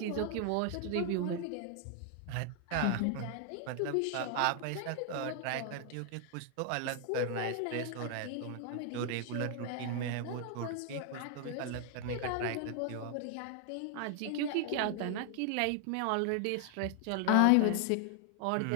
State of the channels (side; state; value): both; different; correlation 0.00